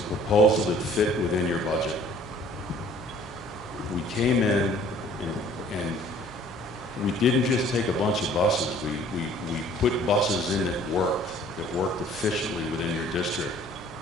proposal that fit within your budget. We came in and we didn't just take a bunch of buses. We put buses in that worked efficiently within your district.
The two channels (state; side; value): normal; both; correlation 0.54